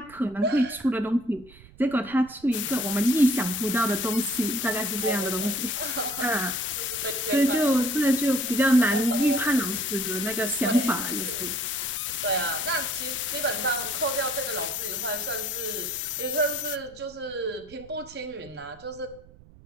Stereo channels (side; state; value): right; noise; rumble, 23 dB below the sound